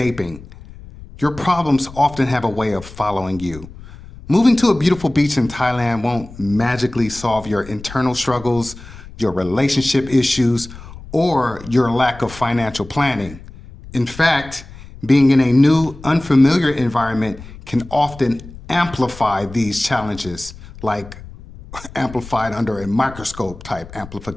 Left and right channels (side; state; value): left; noise; rumble, 17 dB below the sound